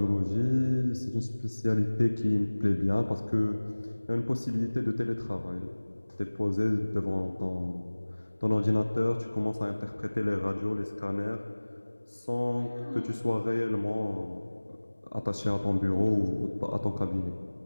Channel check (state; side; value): inverted; both; correlation -1.00